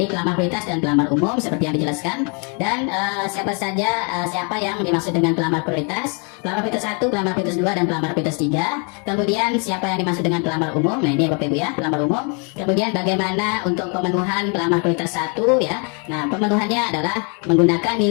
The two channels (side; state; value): right; quieter; 36.3 dB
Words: pelamar prioritas dan pelamar umum seperti yang dijelaskan. Dan siapa saja siapa yang dimaksud dengan pelamar prioritas? Pelamar prioritas 1, pelamar prioritas 2 dan pelamar prioritas 3. Kemudian siapa yang dimaksud dengan pelamar umum? Nah, ini Bapak Ibu ya, pelamar umum. Kemudian bagaimana untuk pemenuhan pelamar prioritas 1 ya? Nah, pemenuhannya adalah menggunakan